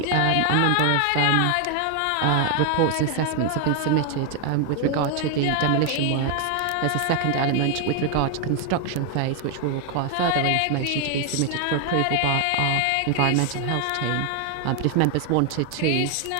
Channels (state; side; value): different; both; correlation 0.00